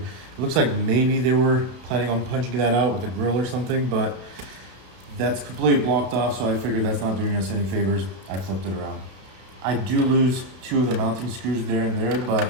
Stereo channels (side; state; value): left; late; 32 ms